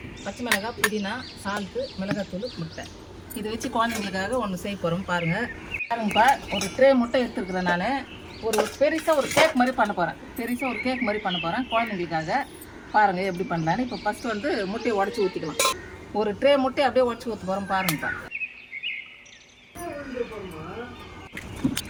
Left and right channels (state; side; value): identical; both; correlation 1.00